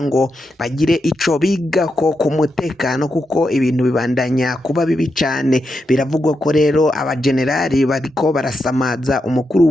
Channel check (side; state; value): both; normal; correlation 0.85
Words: ngo bagire ico bigako ku mutekano kuko ibintu bibandanya kuba bibi cane. Biravugwa ko rero abagenerali bariko barasamaza umukuru